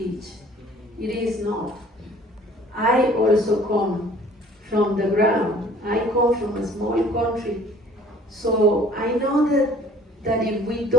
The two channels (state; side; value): normal; both; correlation 0.53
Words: It is not. I also come from the ground. I come from a small country. So I know that if we